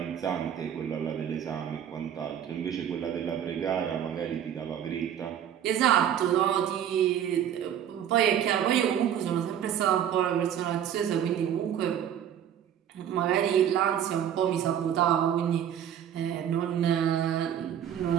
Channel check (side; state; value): left; quieter; 9.7 dB